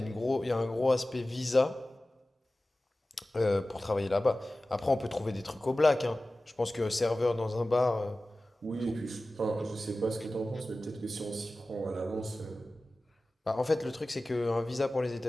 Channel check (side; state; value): both; normal; correlation 0.96